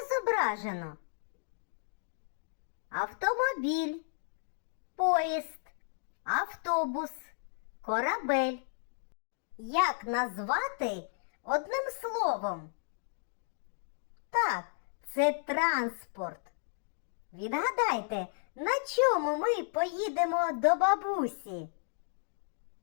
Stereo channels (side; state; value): right; silent; digital silence